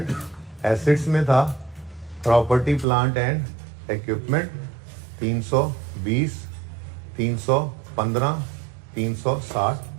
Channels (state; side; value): drops out; left; at 2.9 s